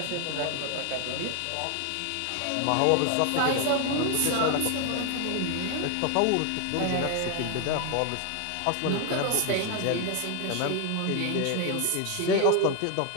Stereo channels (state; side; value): different; both; correlation 0.01